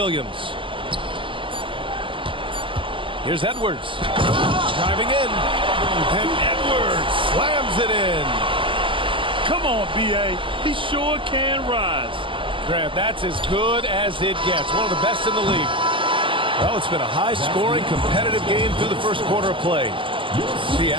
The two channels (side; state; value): left; late; 0.25 ms